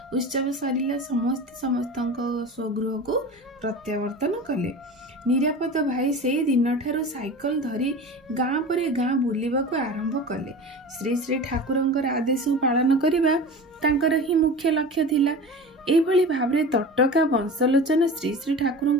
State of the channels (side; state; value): both; normal; correlation 0.33